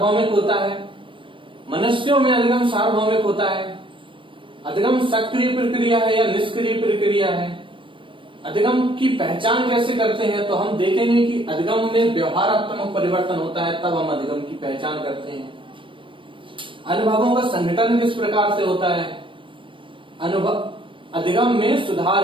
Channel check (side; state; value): left; late; 0.25 ms